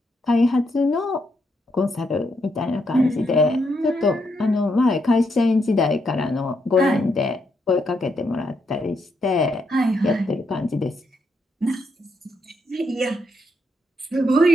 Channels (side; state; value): both; normal; correlation 0.78